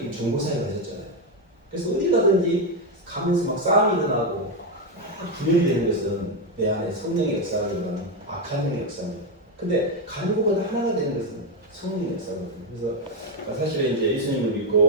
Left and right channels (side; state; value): both; normal; correlation 0.07